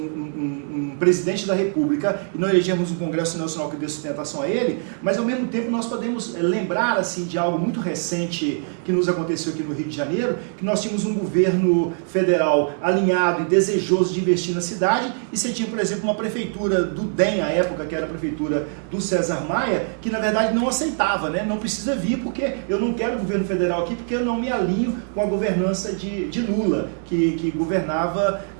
presidente da República e não elegermos um Congresso Nacional que dê sustentação a ele, mas ao mesmo tempo nós podemos lembrar assim, de algo muito recente que nos aconteceu aqui no Rio de Janeiro, que nós tínhamos um governo federal alinhado e desejoso de investir na cidade, e você tinha, por exemplo, uma prefeitura do DEM, à época, que era a prefeitura do César Maia, que na verdade não aceitava, não precisa vir porque eu não quero o governo federal aqui, porque eu não me alinho com a governança de Lula, que governava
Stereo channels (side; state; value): left; silent; 64 dB below the other